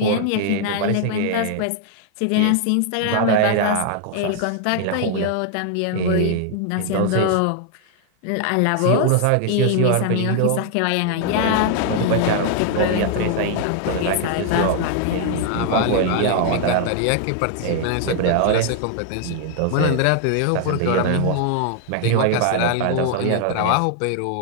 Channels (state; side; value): different; both; correlation 0.00